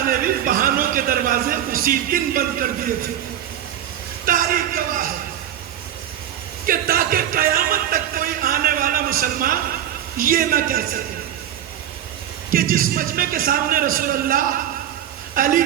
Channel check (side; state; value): left; quieter; 11.0 dB